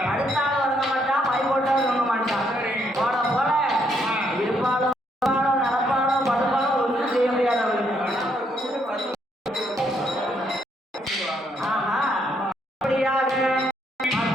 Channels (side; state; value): both; normal; correlation 0.73